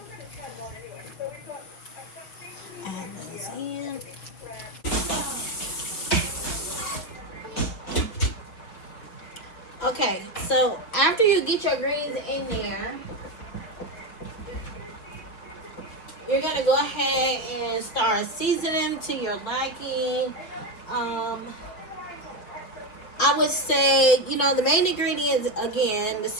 Add those in. Okay, so after you get your greens in there, you're gonna go ahead and start seasoning to your liking. I would say, the main ingredients, again, the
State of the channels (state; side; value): late; right; 5.3 ms